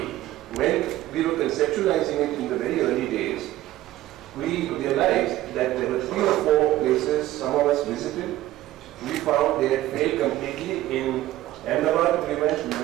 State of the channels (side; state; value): left; quieter; 15.2 dB